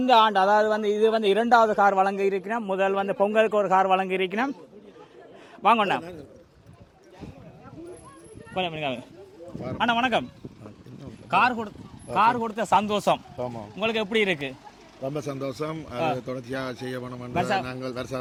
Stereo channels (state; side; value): identical; both; correlation 1.00